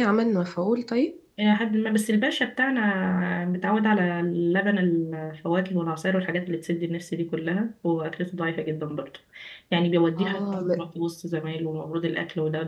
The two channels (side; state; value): both; identical; correlation 1.00